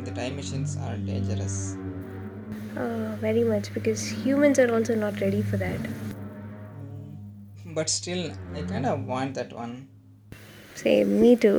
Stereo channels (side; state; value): both; identical; correlation 1.00